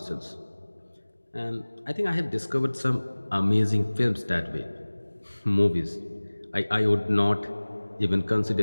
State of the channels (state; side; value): inverted; both; correlation -1.00